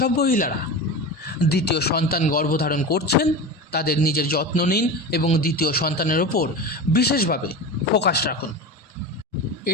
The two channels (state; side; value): normal; both; correlation 0.27